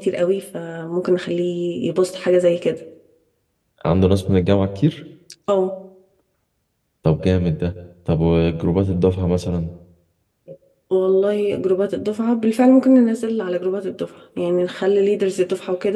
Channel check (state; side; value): identical; both; correlation 1.00